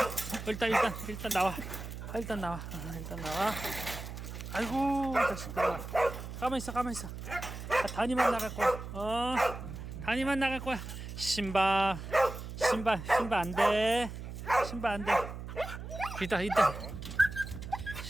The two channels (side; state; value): right; noise; hum, 9 dB below the sound